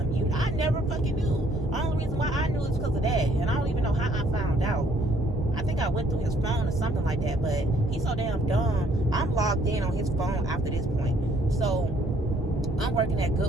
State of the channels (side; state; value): both; normal; correlation 0.64